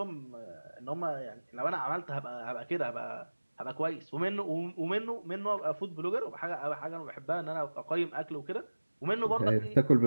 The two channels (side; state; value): both; inverted; correlation -1.00